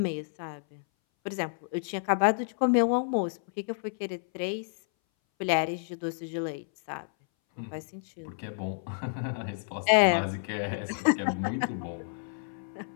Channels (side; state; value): right; silent; 58 dB below the other